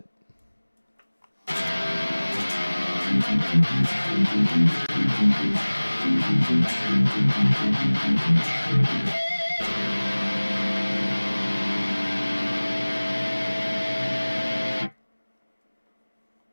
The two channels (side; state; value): both; inverted; correlation -1.00